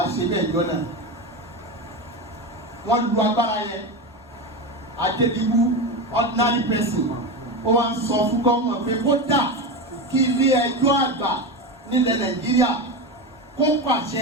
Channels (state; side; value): normal; both; correlation 0.19